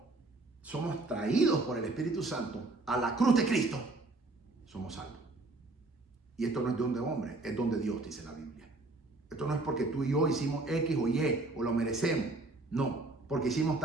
somos traídos por el Espíritu Santo a la cruz de Cristo, somos salvos. Y esto no es don de hombre, es don de Dios, dice la Biblia. Esto no es porque tú y yo hicimos X o Y o lo merecemos. No. Porque hicimos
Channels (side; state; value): left; quieter; 3.1 dB